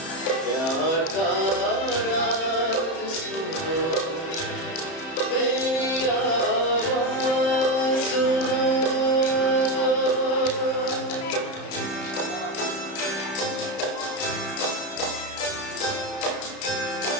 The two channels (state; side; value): late; right; 31 ms